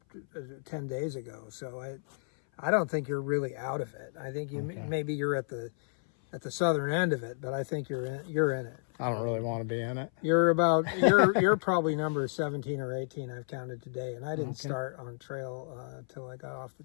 10 days ago. So I don't think you're really out of it. I think maybe you're at the southern end of it, but I think you're in it. I don't really want to be in it. You're probably number 17 or 18 I've counted today, and I didn't start on trail until I got off the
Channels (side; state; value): right; silent; 57 dB below the other